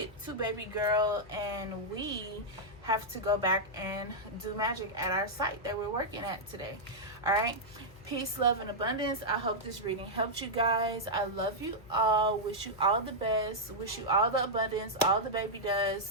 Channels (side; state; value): left; noise; hum, 21 dB below the sound